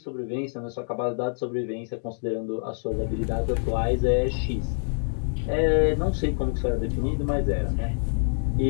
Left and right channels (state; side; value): silent; right; digital silence